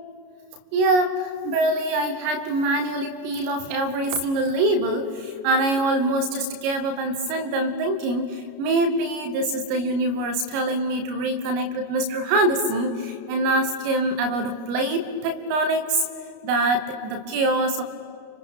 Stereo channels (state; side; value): late; left; 33 ms